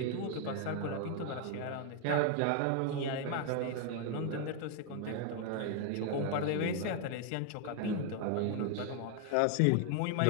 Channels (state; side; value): different; both; correlation 0.00